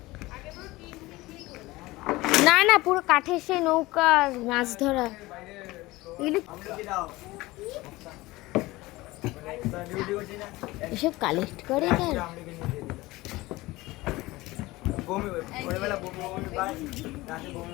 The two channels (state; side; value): quieter; right; 19.8 dB